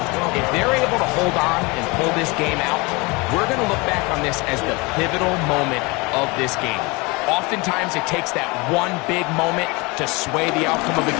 If they're able to hold on and pull this game out, we're going to look back on this as the pivotal moment of this game. Oftentimes, it takes that one big moment to sway the outcome of a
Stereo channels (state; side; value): quieter; right; 26.2 dB